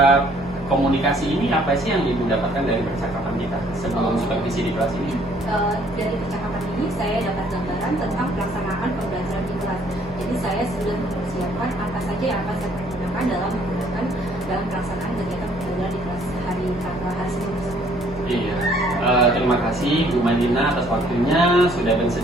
komunikasi ini, apa sih yang Ibu dapatkan dari percakapan kita sebelum supervisi di kelas ini? Dari percakapan ini saya dapat gambaran tentang pelaksanaan pembelajaran di kelas. Jadi saya sudah mempersiapkan apa saja yang akan saya pergunakan dalam pelaksanaan kegiatan pembelajaran di kelas hari sebelum. Iya, terima kasih Bu Mailina atas waktunya sudah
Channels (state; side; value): normal; both; correlation 0.62